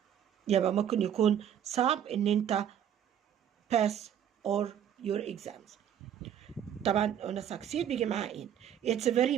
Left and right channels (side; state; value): left; quieter; 9.6 dB